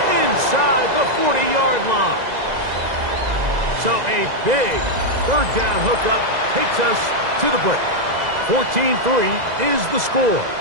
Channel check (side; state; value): left; late; 2.0 ms